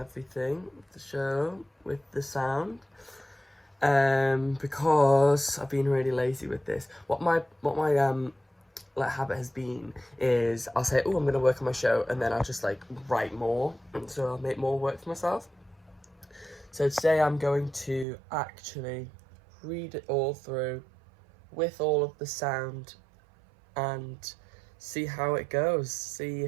the show, with the sound. Because I've been really lazy with this. What my habit has been is I'll say, oh, I'm gonna work on my show, and then I'll just like write more, and so I'll make more work for myself. So today I'm going to actually read it all through with all of the sound and see how it goes, see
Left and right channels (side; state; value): left; drops out; at 18.1 s